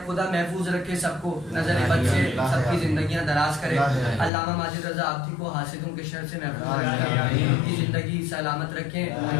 खुदा महफूज रखे सबको, नजर बद से सबकी जिंदगियां दराज करे, अल्लामा माजिद रजा आब्दी को हासिदों के शर से महफूज रखे, उनकी जिंदगी सलामत रखें,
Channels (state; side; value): drops out; right; at 4.3 s